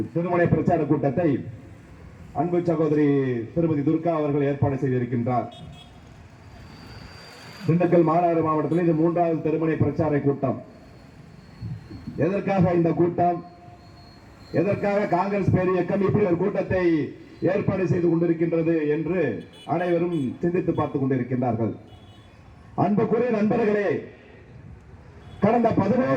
பிரச்சார கூட்டத்தை அன்பு சகோதரி திருமதி துர்கா அவர்கள் ஏற்பாடு செய்திருக்கின்றார். திண்டுக்கல் மாநகர மாவட்டத்தில் இது 3வது திருமணி பிரச்சார கூட்டம். எதற்காக இந்த கூட்டம்? எதற்காக காங்கிரஸ் பேர் இயக்கம் இப்படி ஒரு கூட்டத்தை ஏற்பாடு செய்து கொண்டிருக்கின்றது என்று அனைவரும் சிந்தித்து பார்த்துக் கொண்டிருக்கின்றார்கள். அன்புக்குரிய நண்பர்களே, கடந்த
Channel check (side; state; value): both; identical; correlation 1.00